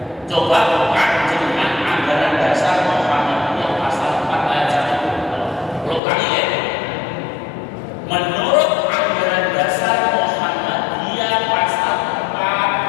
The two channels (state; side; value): drops out; right; at 6.0 s